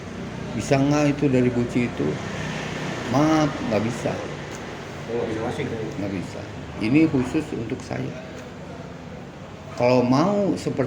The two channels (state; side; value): identical; both; correlation 1.00